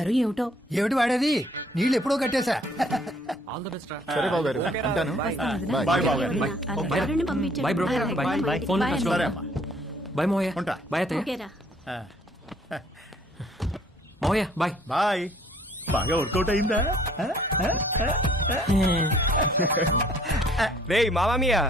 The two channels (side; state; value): both; normal; correlation 0.60